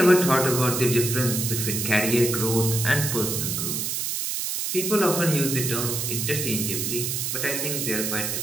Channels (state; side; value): noise; right; hiss, 2 dB below the sound